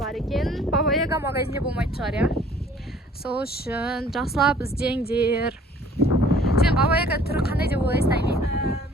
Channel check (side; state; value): both; normal; correlation 0.54